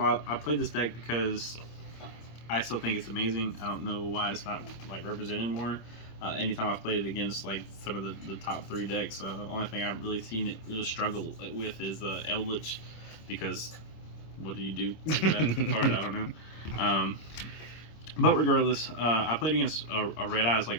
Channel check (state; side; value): late; right; 26 ms